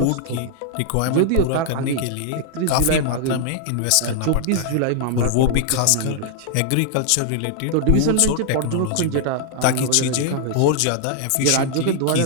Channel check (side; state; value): both; different; correlation 0.00